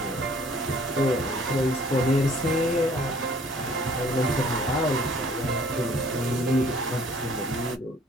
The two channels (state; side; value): normal; both; correlation 0.56